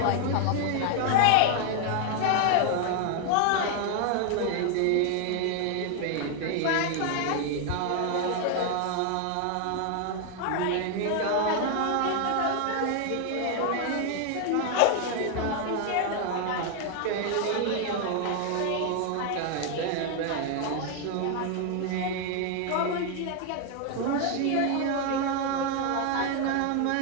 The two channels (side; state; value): both; different; correlation 0.00